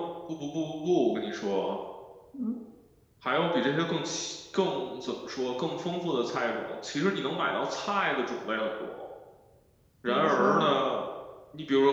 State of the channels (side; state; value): both; identical; correlation 1.00